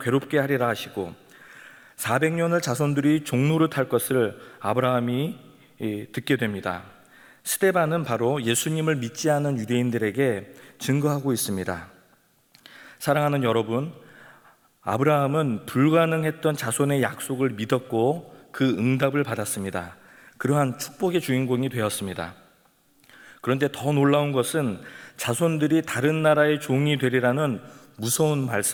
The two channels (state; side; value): identical; both; correlation 1.00